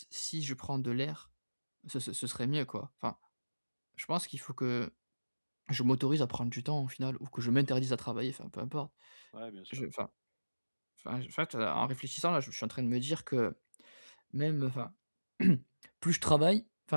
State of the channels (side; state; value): both; inverted; correlation -1.00